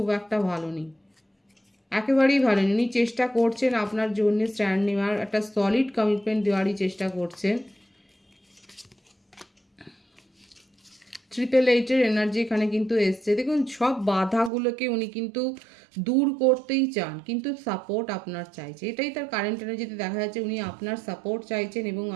একটা ভালো নেই, একেবারেই ভালো নেই। উনি চেষ্টা করছেন আপনার জন্য স্ট্যান্ড নেওয়ার, একটা সলিড কমিটমেন্ট দেওয়ারই চেষ্টা করছেন। 888 এনার্জি এখানে কিন্তু এসছে। দেখুন সব বাধাগুলোকে উনি কিন্তু দূর করতেই চান, কিন্তু সাপোর্ট আপনার চাইছে, এটাই তার কারেন্ট এনার্জিতে দেখা যাচ্ছে। উনি আপনার সাপোর্ট চাইছেন এবং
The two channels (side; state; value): left; drops out; at 14.5 s